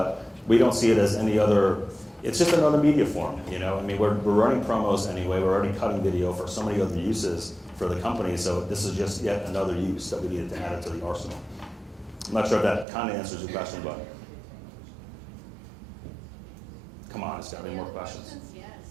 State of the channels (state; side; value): drops out; left; at 12.9 s